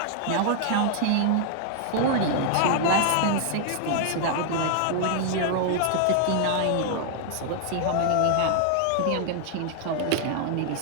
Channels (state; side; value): different; both; correlation 0.00